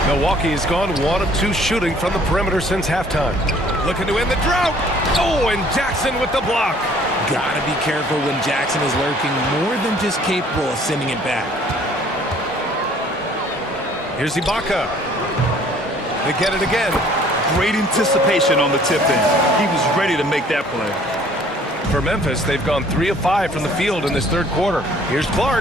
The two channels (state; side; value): normal; both; correlation 0.56